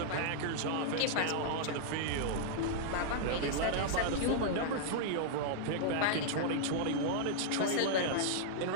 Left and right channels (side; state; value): both; different; correlation -0.01